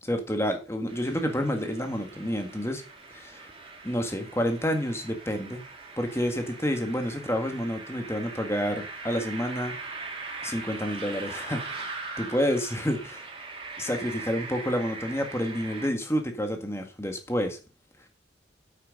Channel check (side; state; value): both; normal; correlation 0.73